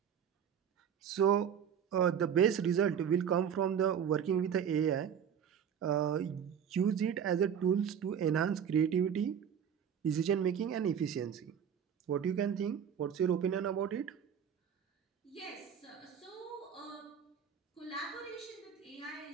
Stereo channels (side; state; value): left; quieter; 8.2 dB